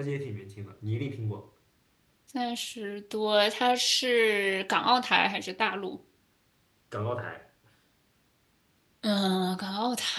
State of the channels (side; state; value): both; identical; correlation 1.00